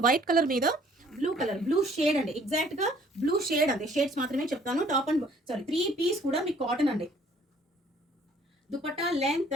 వైట్ కలర్ మీద బ్లూ షేడ్ అండి. ఎగ్జాక్ట్ గా బ్లూ షేడ్ అండి. షేడ్స్ మాత్రమే చెప్తాను. 3 పీస్ కూడా మీకు కాటన్ అండి. దుపట్టా లెంత్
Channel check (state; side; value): normal; both; correlation 0.58